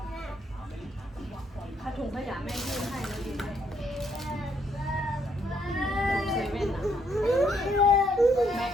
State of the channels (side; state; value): both; normal; correlation 0.71